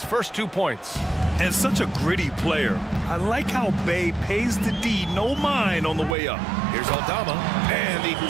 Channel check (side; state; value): left; drops out; at 6.2 s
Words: first 2 points. And such a gritty player. I like how Bay pays the D no mind on the way up. Here's Aldama, and he